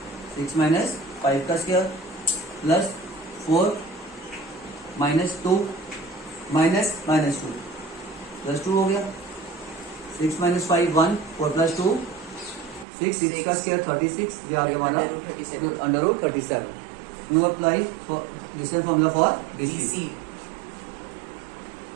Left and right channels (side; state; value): left; drops out; at 12.9 s